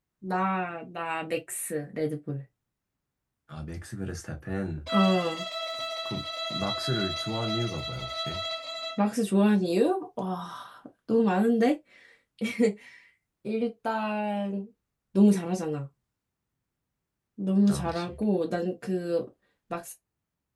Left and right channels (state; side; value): identical; both; correlation 1.00